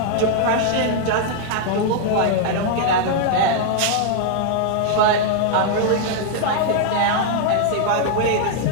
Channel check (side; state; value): both; different; correlation 0.00